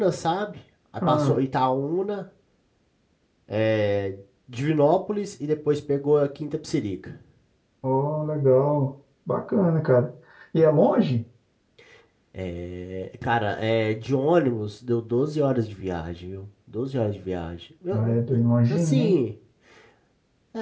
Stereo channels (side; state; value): both; identical; correlation 1.00